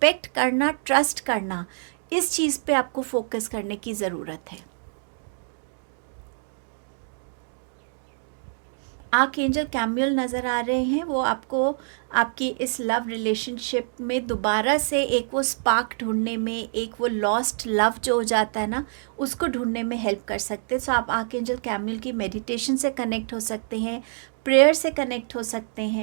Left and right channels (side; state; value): left; silent; digital silence